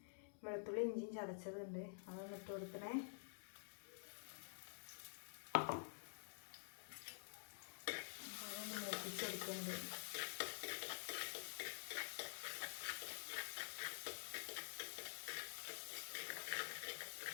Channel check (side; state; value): right; silent; digital silence